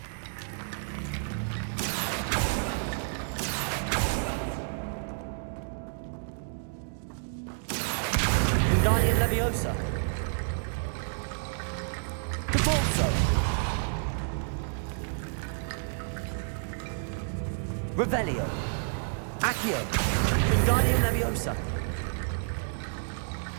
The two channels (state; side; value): silent; left; digital silence